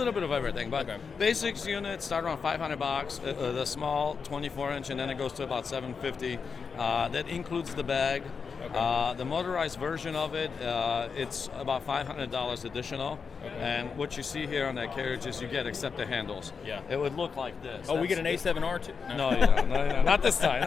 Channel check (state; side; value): quieter; right; 5.6 dB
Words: bit of everything, but basics units start around $500. The small 24-inch, and then it goes to about $750. That includes the bag. The motorized version of it, it's about $500 additional. And what you see here on that carriage is you get except the handles. Yeah. It would look like this. Oh, we get an A7R too? No, you don't. No, not this time.